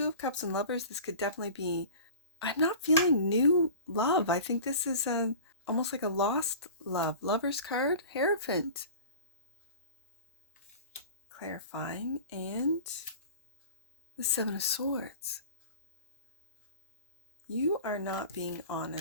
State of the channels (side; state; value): both; inverted; correlation -0.38